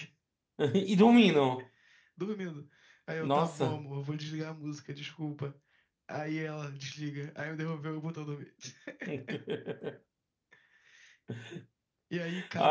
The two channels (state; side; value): identical; both; correlation 1.00